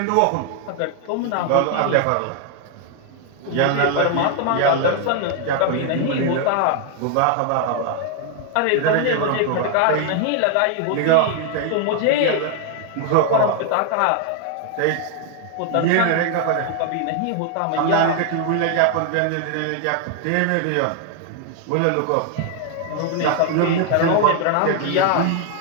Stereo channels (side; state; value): both; different; correlation 0.00